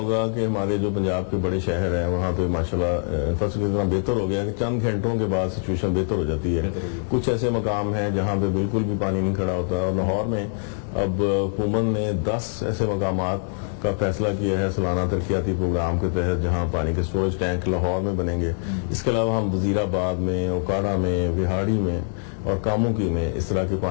کہ ہمارے جو پنجاب کے بڑے شہر ہیں وہاں پہ ماشاءاللہ انفراسٹرکچر اتنا بہتر ہو گیا کہ چند گھنٹوں کے بعد سچویشن بہتر ہو جاتی ہے. کچھ ایسے مقام ہیں جہاں پہ بالکل بھی پانی نہیں کھڑا ہوتا, اور لاہور میں اب حکومت نے 10 ایسے مقامات کا فیصلہ کیا ہے سالانہ ترقیاتی پروگرام کے تحت جہاں پانی کے سٹوریج ٹینک لاہور میں بنیں گے. اس کے علاوہ ہم وزیر آباد میں, اوکاڑا میں, وہاڑی میں اور کاموکی میں اس طرح کے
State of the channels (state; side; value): silent; right; digital silence